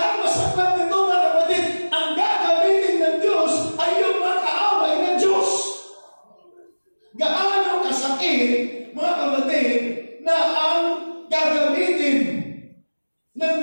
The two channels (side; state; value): both; inverted; correlation -1.00